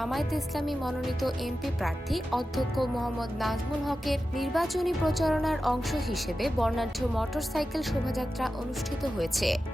ইসলামী মনোনীত এমপি প্রার্থী অধ্যক্ষ মোহাম্মদ নাজমুল হকের নির্বাচনী প্রচারণার অংশ হিসেবে বর্ণাঢ্য মোটরসাইকেল শোভাযাত্রা অনুষ্ঠিত হয়েছে।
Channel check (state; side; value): normal; both; correlation 0.92